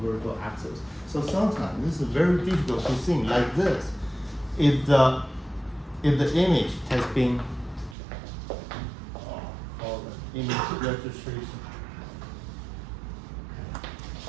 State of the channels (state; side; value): drops out; left; at 8.0 s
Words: vertical axis. So sometimes this is very difficult to see like this. If the image has been called image registration.